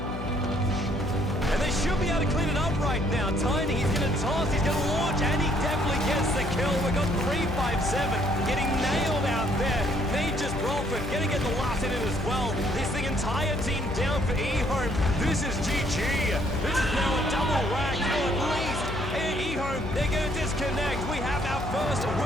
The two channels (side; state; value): left; noise; hum, 6 dB below the sound